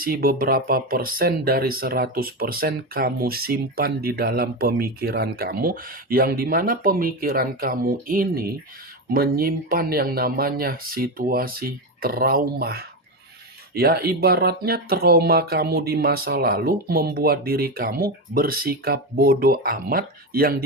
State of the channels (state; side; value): normal; both; correlation 0.15